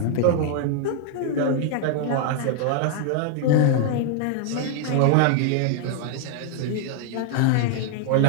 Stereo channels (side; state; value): both; different; correlation 0.00